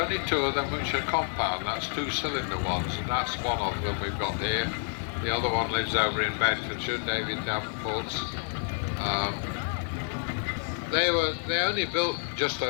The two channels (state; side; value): silent; right; 59 dB below the other